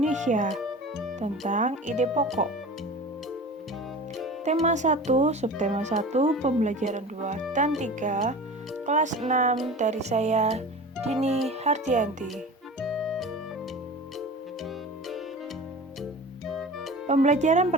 tentang ide pokok. Tema 1, subtema 1, pembelajaran 2 dan 3, kelas 6 dari saya, Dini Hardianti. Pembelajaran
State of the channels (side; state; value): both; normal; correlation 0.36